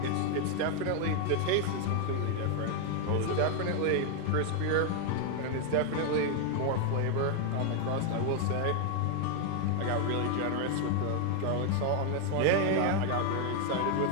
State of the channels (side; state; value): both; different; correlation 0.00